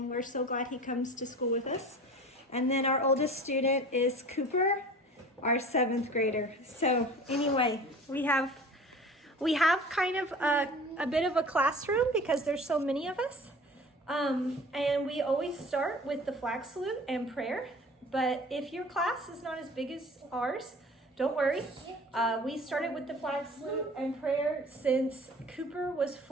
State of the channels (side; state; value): both; normal; correlation 0.42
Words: we're so glad he comes to school with us. And then our oldest student is Cooper, our 7th grader. So anyway, we have kind of a bit of a classroom because there's so many of us. And we always start with the flag salute and prayer. But if your class is not as big as ours, don't worry. We started with the flag salute and prayer since Cooper was